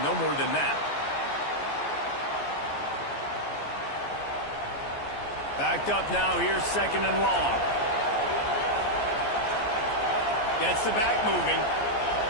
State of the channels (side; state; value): right; late; 14 ms